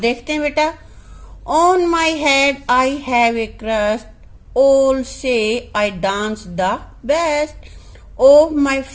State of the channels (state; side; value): identical; both; correlation 1.00